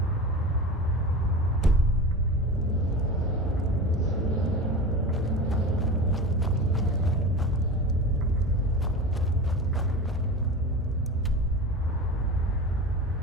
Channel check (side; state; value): both; normal; correlation 0.30